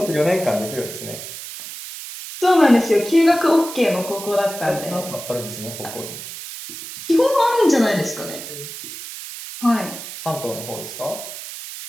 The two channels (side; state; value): right; noise; hiss, 11 dB below the sound